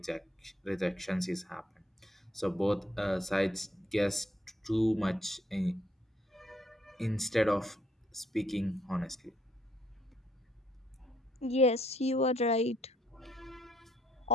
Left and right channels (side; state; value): both; normal; correlation 0.68